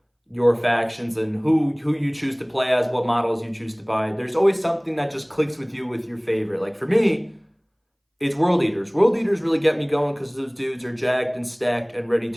your factions and who you choose to play as, what models you choose to buy. There's always something that just clicks with you with your favorite. Like for me, it's World Eaters. World Eaters really get me going because those dudes are jacked and stacked and ready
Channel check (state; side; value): identical; both; correlation 1.00